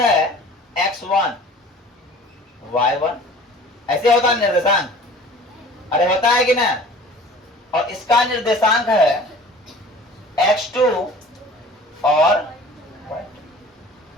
x1 y1, ऐसे होता है निर्देशांक। अरे होता है कि ना? और इसका निर्देशांक है x2 और y2।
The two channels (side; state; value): both; normal; correlation 0.45